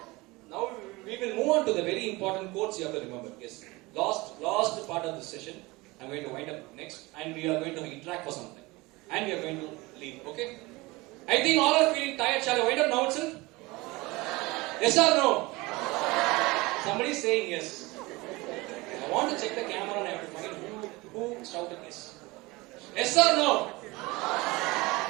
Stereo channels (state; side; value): quieter; left; 22.5 dB